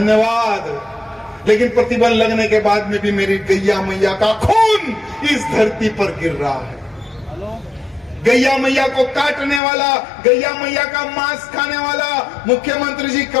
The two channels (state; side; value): drops out; right; at 9.6 s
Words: लेकिन प्रतिबंध लगने के बाद में भी मेरी गैया मैया का खून इस धरती पर गिर रहा है। गैया मैया को काटने वाला, गैया मैया का मांस खाने वाला मुख्यमंत्री जी